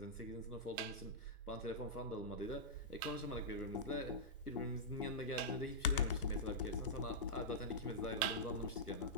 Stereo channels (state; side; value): normal; both; correlation -0.13